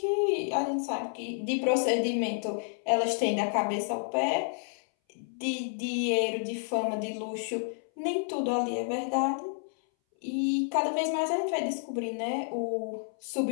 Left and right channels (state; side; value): silent; right; 58 dB below the other